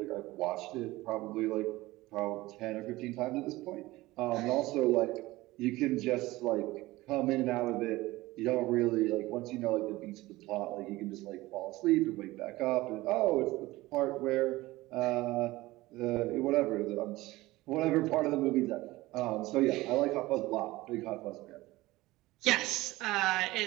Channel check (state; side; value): quieter; left; 18.9 dB